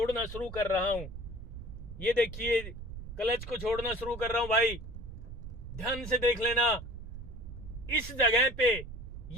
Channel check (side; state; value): right; noise; rumble, 10 dB below the sound